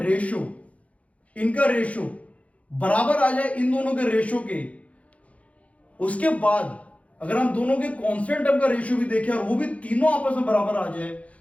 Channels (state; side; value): late; right; 0.065 ms